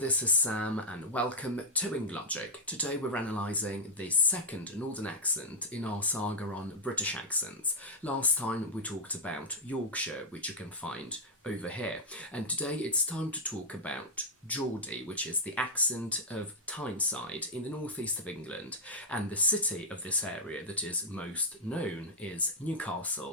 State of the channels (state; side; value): normal; both; correlation -0.04